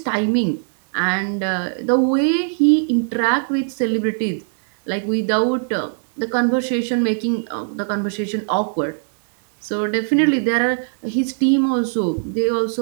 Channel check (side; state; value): left; silent; digital silence